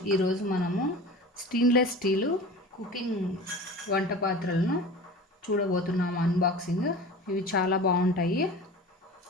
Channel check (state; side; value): normal; both; correlation 0.36